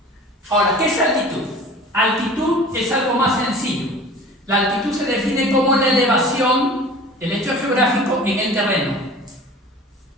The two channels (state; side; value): normal; both; correlation 0.42